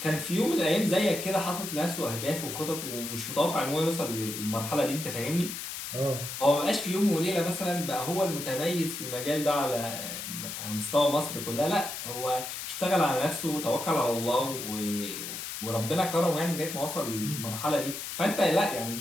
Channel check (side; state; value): left; noise; hiss, 7 dB below the sound